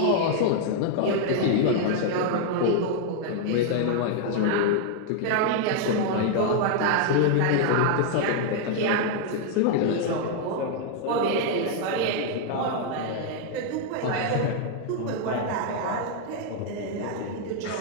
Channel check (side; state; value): both; different; correlation 0.00